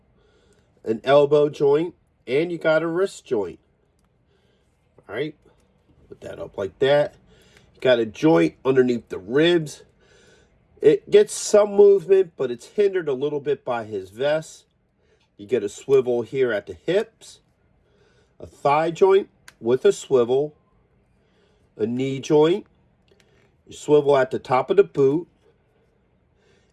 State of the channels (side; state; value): both; identical; correlation 1.00